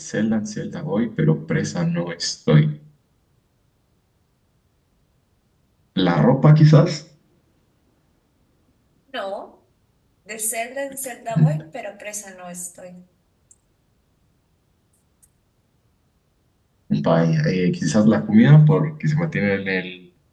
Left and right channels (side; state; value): both; identical; correlation 1.00